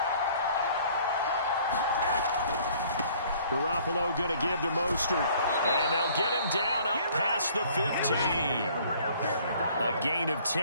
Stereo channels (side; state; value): both; inverted; correlation -0.56